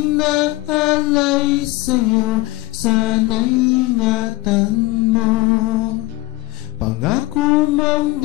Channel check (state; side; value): quieter; right; 18.2 dB